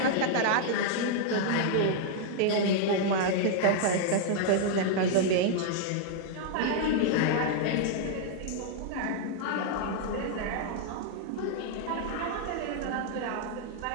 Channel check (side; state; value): both; different; correlation -0.01